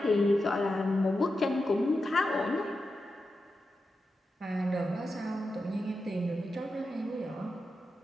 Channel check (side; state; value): both; normal; correlation 0.89